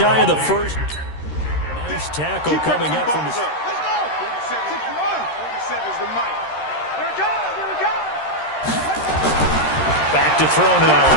of the first. Nice tackle coming up from his... Let's go! 47 is the mic. Here it comes, here it comes! Back to throw now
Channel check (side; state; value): right; late; 13 ms